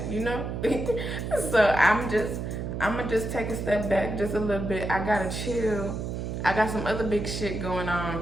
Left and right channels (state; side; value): noise; right; hum, 4 dB below the sound